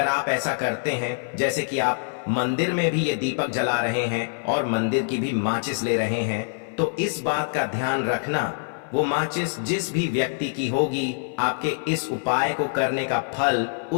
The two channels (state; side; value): silent; right; 56 dB below the other